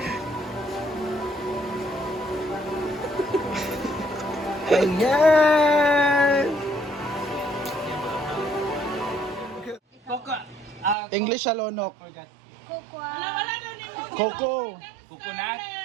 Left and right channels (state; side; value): drops out; left; at 11.0 s